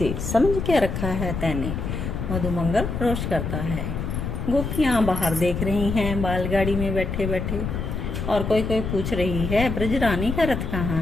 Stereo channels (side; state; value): left; noise; rumble, 4 dB below the sound